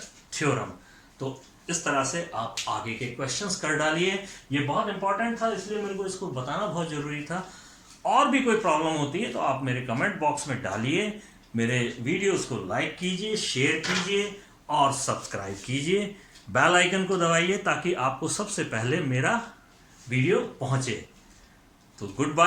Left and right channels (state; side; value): identical; both; correlation 1.00